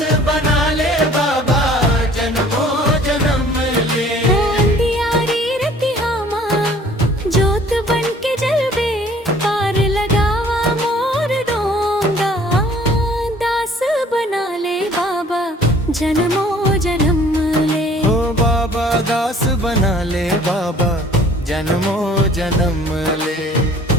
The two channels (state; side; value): normal; both; correlation 0.54